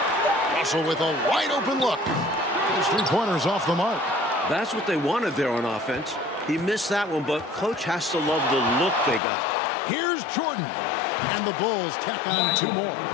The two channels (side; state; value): right; drops out; at 9.2 s